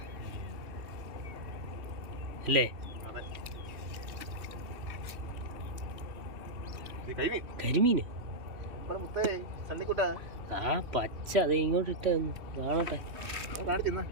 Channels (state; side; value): late; left; 3.1 ms